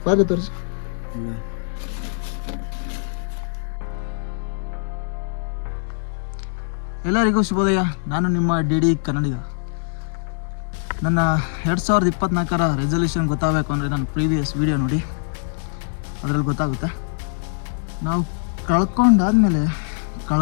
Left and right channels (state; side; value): silent; right; digital silence